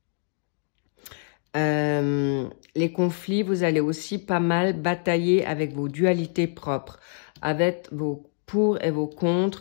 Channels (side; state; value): right; silent; digital silence